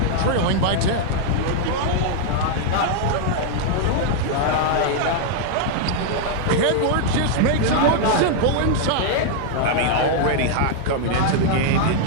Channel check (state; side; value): different; both; correlation 0.00